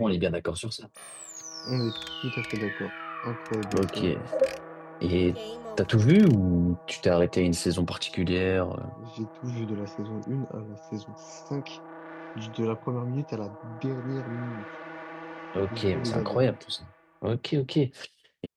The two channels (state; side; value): identical; both; correlation 1.00